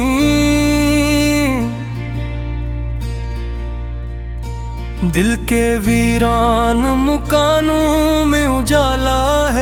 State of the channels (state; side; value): identical; both; correlation 1.00